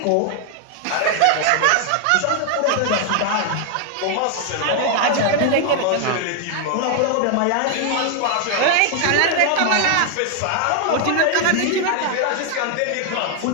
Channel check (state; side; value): different; both; correlation 0.00